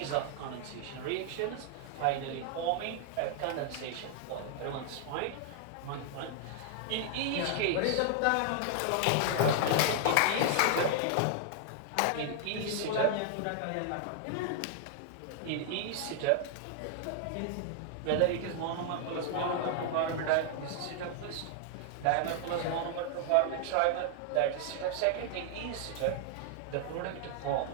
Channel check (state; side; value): different; both; correlation 0.00